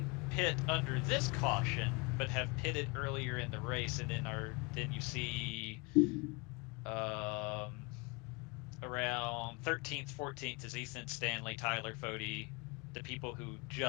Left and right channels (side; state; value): right; quieter; 28.1 dB